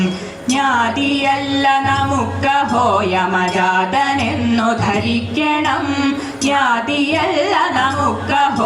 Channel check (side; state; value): both; identical; correlation 1.00